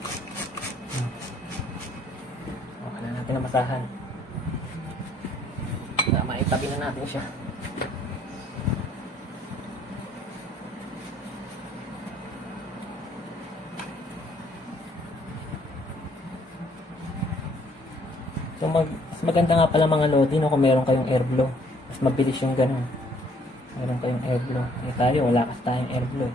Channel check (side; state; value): both; normal; correlation 0.63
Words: masahan. Maitabi na natin siya. So mas maganda nga pala mga lodi, no, kung meron kayong air blow. Mas mabilis yung ganun. Meron kayong air blow. Tayo wala kasi tayong air blow.